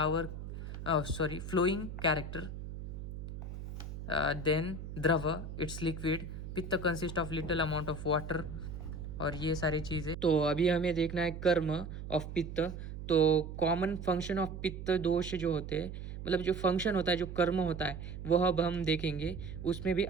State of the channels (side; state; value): right; noise; hum, 9 dB below the sound